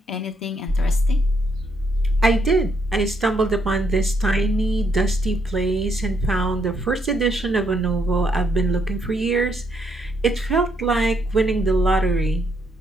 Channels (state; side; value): normal; both; correlation 0.74